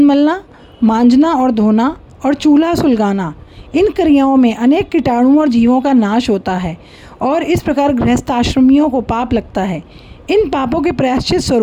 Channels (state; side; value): identical; both; correlation 1.00